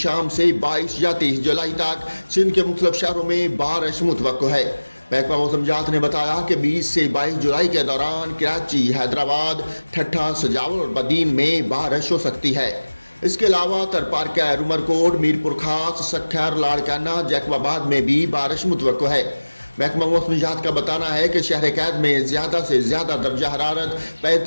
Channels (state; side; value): inverted; both; correlation -1.00